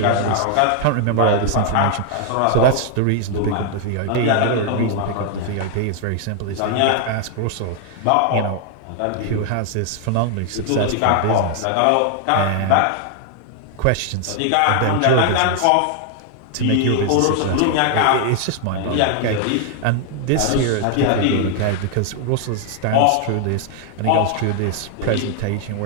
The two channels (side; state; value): both; different; correlation 0.00